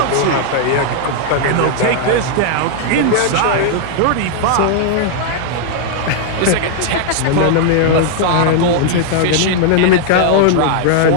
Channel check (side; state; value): both; different; correlation -0.01